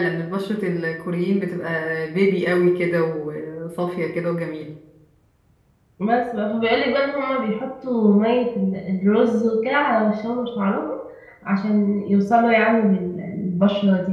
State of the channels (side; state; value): both; identical; correlation 1.00